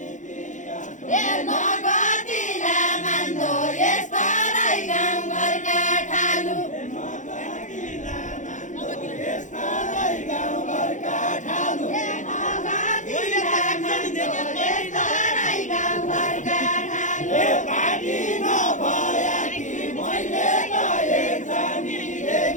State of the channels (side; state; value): right; late; 0.36 ms